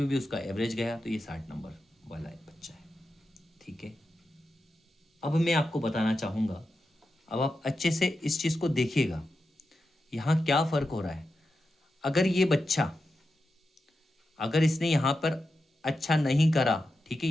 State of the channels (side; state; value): both; normal; correlation 0.89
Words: भी उसका एवरेज गया, तो ये 60 नंबर वाला एक बच्चा है। ठीक है, अब मैं आपको बताना चाहूँगा, अब आप अच्छे से इस चीज़ को देखिएगा, यहाँ क्या फ़र्क हो रहा है। अगर ये बच्चा, अगर इसने यहाँ पर अच्छा नहीं करा, ठीक है,